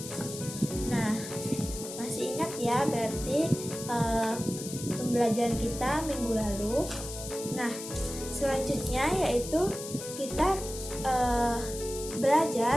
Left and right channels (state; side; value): noise; left; hiss, 10 dB below the sound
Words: Nah, masih ingat ya berarti pembelajaran kita minggu lalu. Nah, selanjutnya yaitu kita